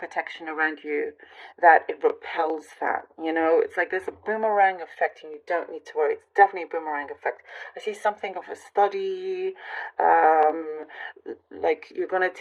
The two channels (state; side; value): identical; both; correlation 1.00